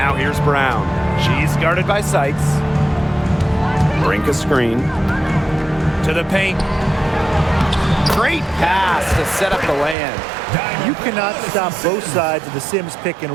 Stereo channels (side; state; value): left; drops out; at 10.0 s